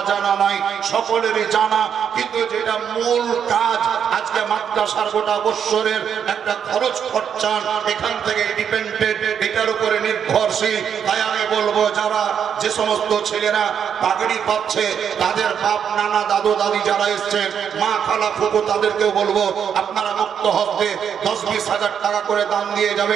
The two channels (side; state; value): left; quieter; 8.0 dB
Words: নাই, সকলেরই জানা। কিন্তু যেটা মূল কাজ, আজকে মাদ্রাসার গোটা বছরের একটা খরচ খরচান এখান থেকে ডিপেন্ডেন্ট, এটার উপরে নির্ভরশীল। তাই আমি বলবো, যারা যে সমস্ত ছেলেরা পাগড়ি পাচ্ছে, তাদের বাপ নানা দাদু দাদি যারা এসছেন, মা খালা ফুফু, তাদেরকেও বলবো আপনারা মুক্ত হস্তে 10-20 হাজার টাকা করে দান দিয়ে